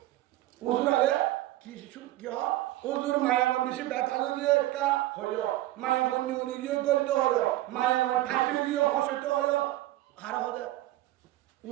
উজুরালে কি ওজুর মায়া বেশি ব্যথা দিয়ে একটা হইল, মায়া বন্যি উনি গিয়ে গলিত হইল, মায়া ঠাকুর গিয়ে হসিত হইল, আর হবে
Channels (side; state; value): left; quieter; 16.1 dB